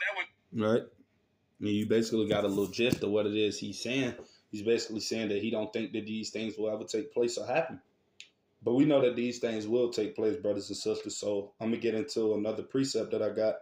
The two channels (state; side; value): identical; both; correlation 1.00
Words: would. Right. You basically got a little gist of what it is he's saying. He's basically saying that he don't think that these things will ever take place or happen. But we know that these things will take place, brothers and sisters. So I'm going to get into another precept that I got.